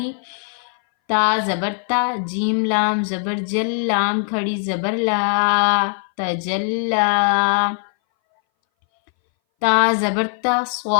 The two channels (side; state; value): right; silent; 61 dB below the other